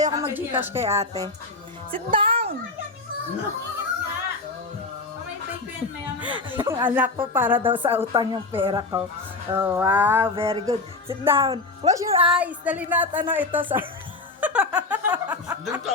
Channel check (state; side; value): quieter; right; 3.5 dB